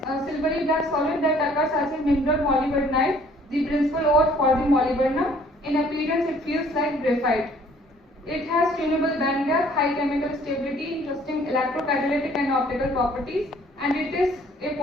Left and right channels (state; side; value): normal; both; correlation 0.58